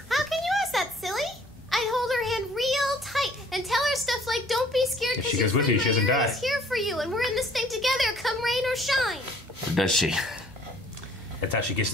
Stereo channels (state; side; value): normal; both; correlation 0.57